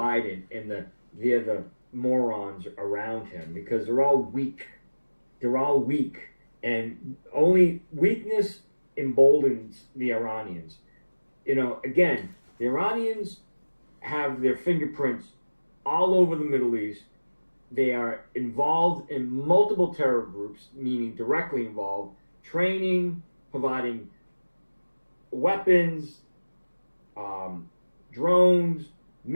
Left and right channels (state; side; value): inverted; both; correlation -1.00